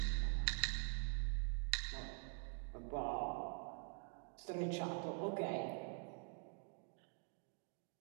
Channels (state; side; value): quieter; left; 36.4 dB